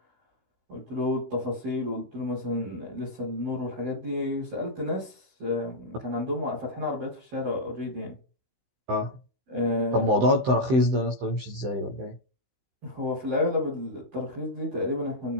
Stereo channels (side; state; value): left; late; 16 ms